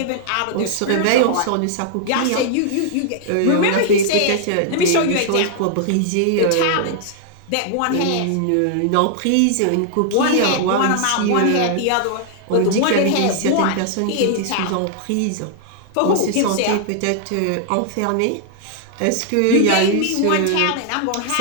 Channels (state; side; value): different; both; correlation -0.01